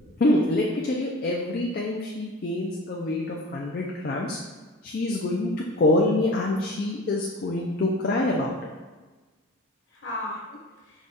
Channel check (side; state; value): both; normal; correlation 0.40